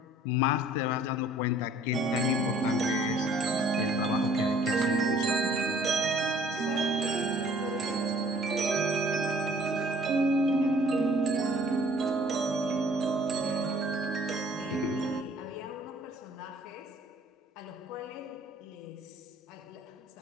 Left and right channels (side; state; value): both; normal; correlation 0.56